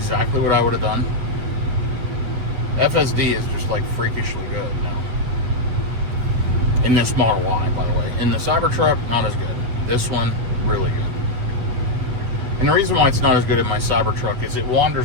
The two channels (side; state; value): left; late; 8.2 ms